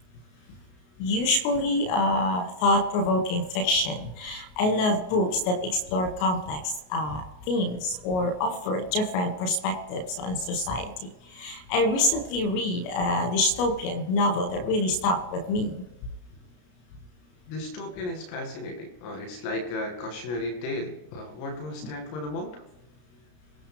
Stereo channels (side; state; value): right; late; 33 ms